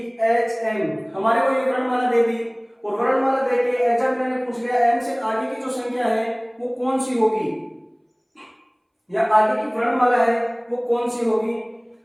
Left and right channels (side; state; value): both; identical; correlation 1.00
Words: H M, हमारे को ये वर्णमाला दे दी और वर्णमाला देके एग्जामिनर ने पूछ लिया M से आगे की जो संख्या है वो कौन सी होगी, या आगे की वर्णमाला है वो कौन सी होगी।